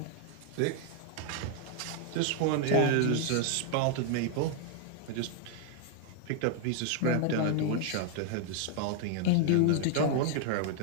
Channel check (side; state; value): both; different; correlation 0.00